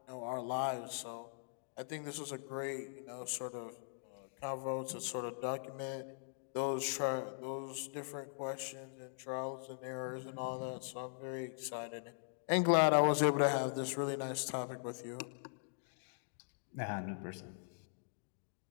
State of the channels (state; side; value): silent; right; digital silence